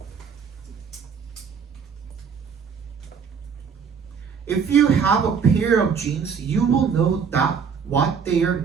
If you have a pair of jeans, you will know that what they are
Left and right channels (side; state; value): left; quieter; 6.4 dB